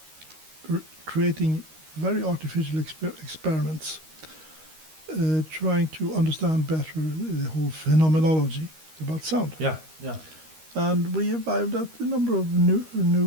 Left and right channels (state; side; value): late; left; 13 ms